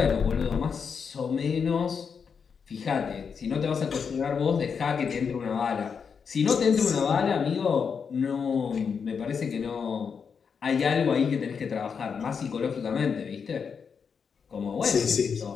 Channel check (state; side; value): quieter; right; 6.2 dB